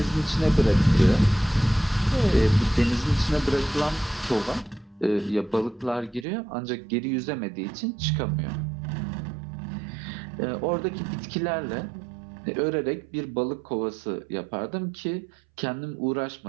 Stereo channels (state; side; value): drops out; left; at 6.2 s